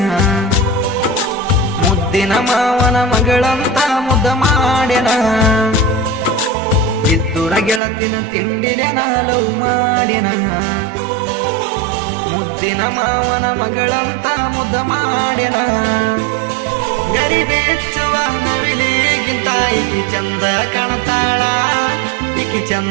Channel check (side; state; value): left; drops out; at 7.8 s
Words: ಮುದ್ದಿನ ಮಾವನ ಮಗಳಂತ ಮುದ್ದ ಮಾಡ್ಯನ ಇದ್ದುರ ಗೆಳತಿನ ತಿಂಡಿನೆ ನಾಲವು ಮಾಡಿನ ಮುದ್ದಿನ ಮಾವನ ಮಗಳಂತ ಮುದ್ದ ಮಾಡ್ಯನ ಗರಿಬೆಚ್ಚುವ ನವಿಲಿಗಿಂತ ಈಕಿ ಚಂದ ಕಾಣತಾಳ ಈಕಿ